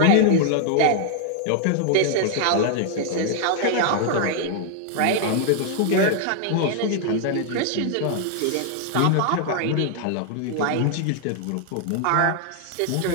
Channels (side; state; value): both; different; correlation 0.00